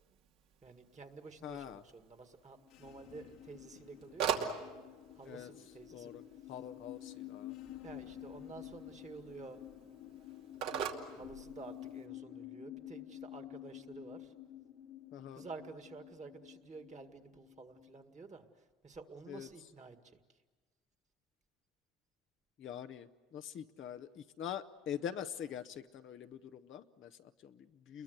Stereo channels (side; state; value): both; normal; correlation 0.32